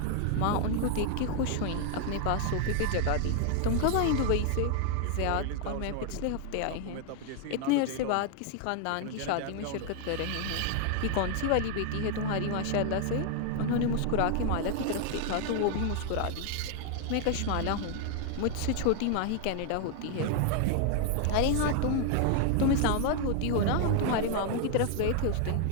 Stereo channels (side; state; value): both; different; correlation 0.00